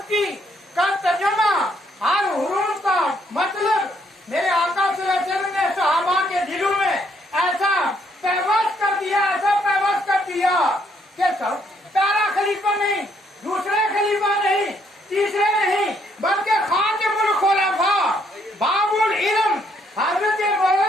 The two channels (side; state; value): both; normal; correlation 0.70